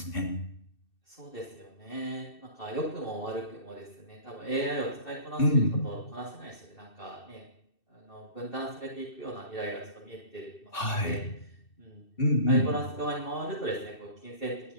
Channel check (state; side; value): late; right; 2.7 ms